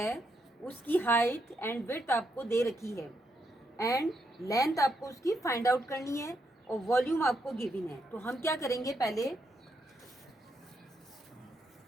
उसकी height and width आपको दे रखी है एंड लेंथ आपको उसकी फाइंड आउट करनी है और वॉल्यूम आपको गिवन है। तो हम क्या करेंगे, पहले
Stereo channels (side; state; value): both; normal; correlation 0.79